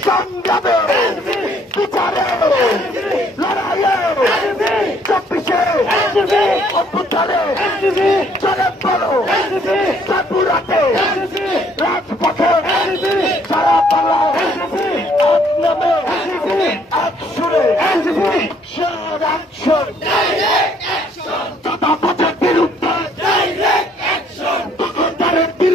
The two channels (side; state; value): both; normal; correlation 0.64